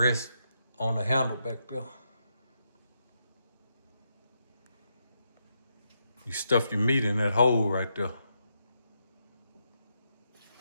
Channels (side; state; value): both; inverted; correlation -0.81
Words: on the handle back there. You stuff your meat in that hole right there.